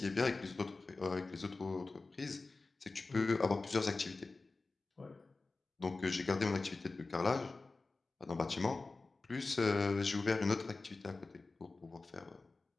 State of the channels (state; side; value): quieter; right; 3.6 dB